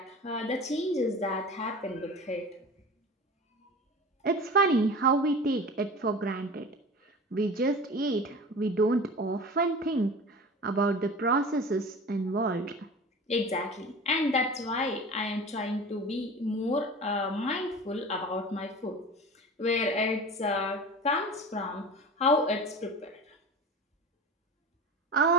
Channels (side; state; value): both; normal; correlation 0.35